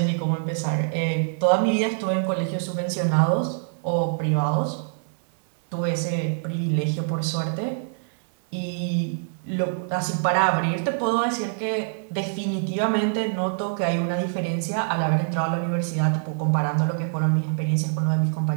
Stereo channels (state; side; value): silent; left; digital silence